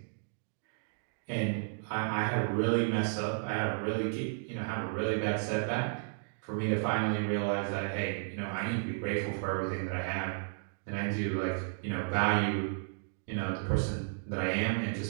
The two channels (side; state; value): left; silent; digital silence